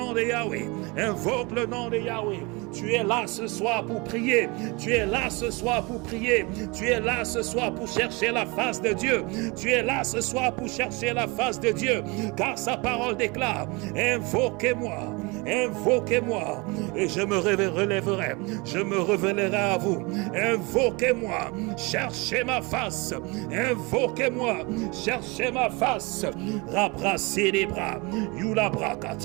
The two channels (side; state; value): left; quieter; 27.0 dB